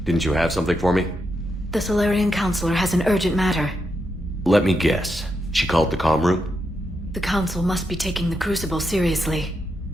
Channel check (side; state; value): both; normal; correlation 0.83